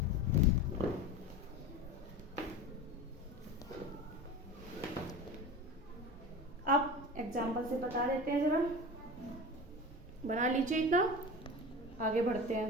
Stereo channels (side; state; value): both; normal; correlation 0.31